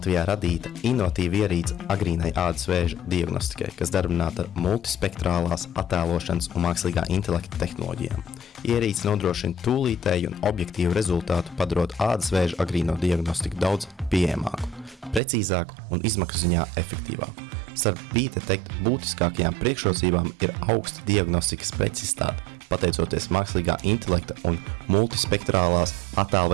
radīta inovatīva ierīce agrīnai ādas vēža diagnostikai, kas darbināta ar multispektrālās attēlošanas un mākslīgā intelekta tehnoloģijām. Ierīce nodrošina tūlītēju un objektīvu rezultātu, padarot ādas vēža agrīno diagnostiku daudz pieejamāku, precīzāku un izmaksu ziņā efektīvāku. Starp B-Detect būtiskākajām priekšrocībām ir augsta diagnostikas precizitāte, pateicoties mākslīgā intelekta un multispektrālās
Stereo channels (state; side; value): drops out; left; at 15.2 s